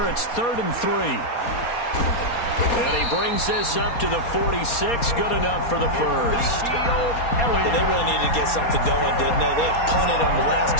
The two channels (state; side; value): late; right; 4.2 ms